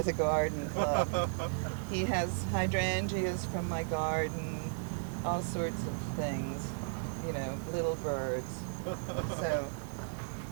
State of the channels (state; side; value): silent; left; digital silence